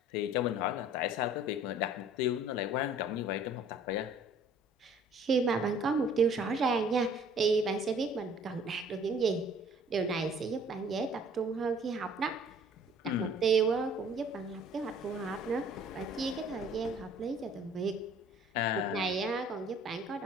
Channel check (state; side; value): normal; both; correlation 0.54